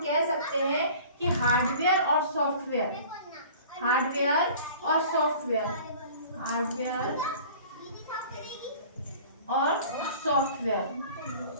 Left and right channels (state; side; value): inverted; both; correlation -0.45